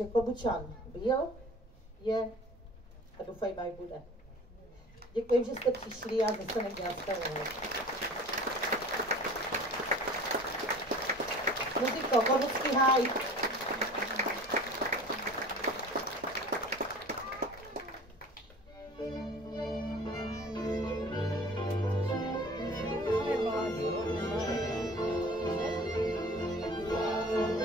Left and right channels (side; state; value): both; normal; correlation 0.44